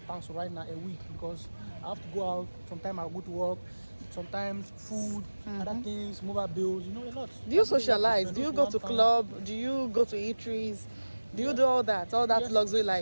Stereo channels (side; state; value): both; inverted; correlation -1.00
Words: right now a week, because I have to go out. Sometimes I go to work. Sometimes food, other things, mobile bills, a lot. Do you socialize? Do you go to club? Do you go to eateries? Do you do all that yes, luxury